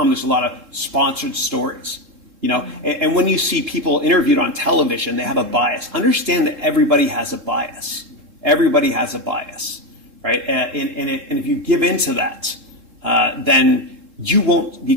There's a lot of sponsored stories. And when you see people interviewed on television, they have a bias. Understand that everybody has a bias. Everybody has a bias, right? And if you give into that, then you won't be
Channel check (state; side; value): late; left; 2.9 ms